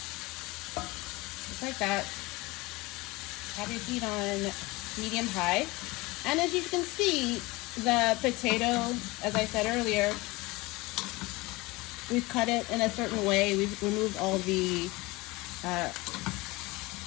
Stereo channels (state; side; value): quieter; right; 22.4 dB